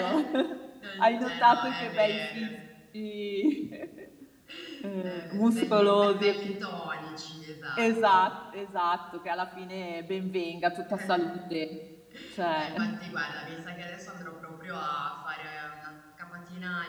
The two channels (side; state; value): both; identical; correlation 1.00